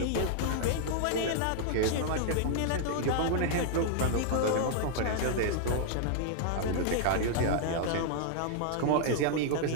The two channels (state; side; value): different; both; correlation -0.01